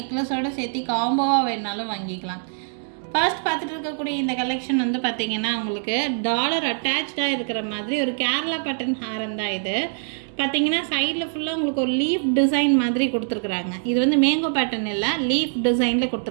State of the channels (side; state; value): left; silent; 63 dB below the other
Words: சேர்த்து காம்போவாக வேணாலும் வாங்கிக்கலாம். ஃபர்ஸ்ட் பார்த்துட்டு இருக்கக்கூடிய இந்த கலெக்ஷன் வந்து பார்த்திங்கன்னா உங்களுக்கு டாலர் அட்டாச்சாக இருக்கிற மாதிரி ஒரு கேரளா பட்டன் ஹாரம் தான். இது பார்த்திங்கன்னா சைடில் ஃபுல்லாக உங்களுக்கு ஒரு லீஃப் டிசைன் மாதிரி கொடுத்துருக்குறாங்க. இது வந்து மேங்கோ பேட்டர்ன் இல்லை, லீஃப் டிசைனில்